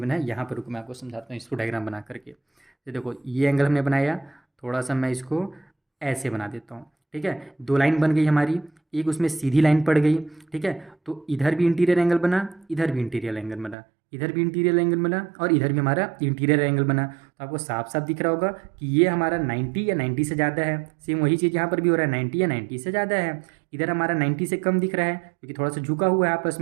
बना है, यहाँ पर रुको मैं आपको समझाता हूँ इसको डायग्राम बना करके। ये देखो ये एंगल हमने बनाया, थोड़ा सा मैं इसको ऐसे बना देता हूँ, ठीक है। दो लाइन बन गई हमारी, एक उसमें सीधी लाइन पड़ गई, ठीक है। तो इधर भी इंटीरियर एंगल बना, इधर भी इंटीरियर एंगल बना, इधर भी इंटीरियर एंगल बना और इधर भी हमारा इंटीरियर एंगल बना। तो आपको साफ साफ दिख रहा होगा कि ये हमारा 90 या 90 से ज़्यादा है। सेम वही चीज़ यहाँ पर भी हो रहा है, 90 या 90 से ज़्यादा है। इधर हमारा 90 से कम दिख रहा है क्योंकि थोड़ा सा झुका हुआ है आपस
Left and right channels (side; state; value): left; drops out; at 13.8 s